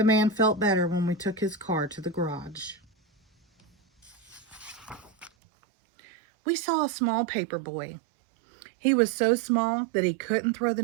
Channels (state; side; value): drops out; left; at 5.3 s